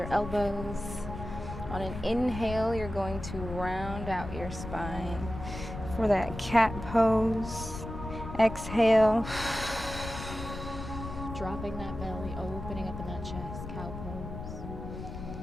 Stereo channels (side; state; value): left; noise; rumble, 9 dB below the sound